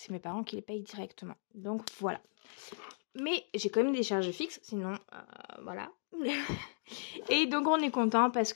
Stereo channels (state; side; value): silent; right; digital silence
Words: mes parents qui les payent directement. Donc voilà. Mais j'ai quand même des charges fixes, sinon voilà. Et donc on est content parce